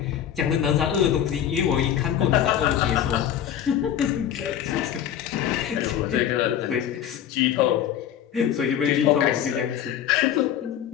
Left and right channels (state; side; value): quieter; right; 10.1 dB